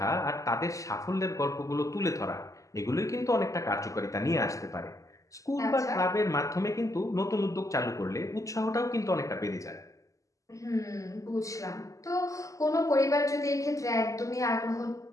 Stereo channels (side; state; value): right; late; 0.16 ms